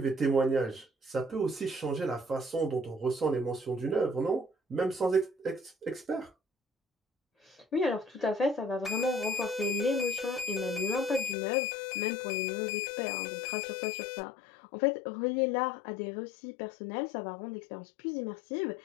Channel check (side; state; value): right; drops out; at 11.4 s